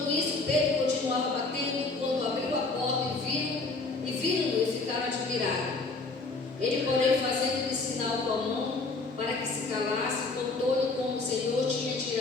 isso, Pedro continuava batendo. Quando abriu a porta e viram-no e ficaram admirados. Ele, porém, fazendo-lhe sinal com a mão para que se calasse, contou-lhe como o Senhor tinha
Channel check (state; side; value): quieter; right; 3.6 dB